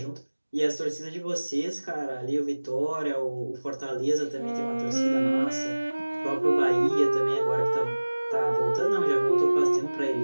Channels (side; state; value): both; inverted; correlation -1.00